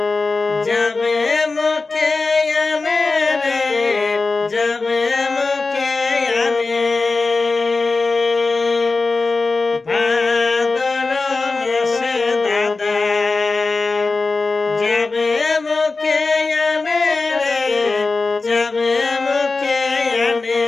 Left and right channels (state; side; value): quieter; right; 3.8 dB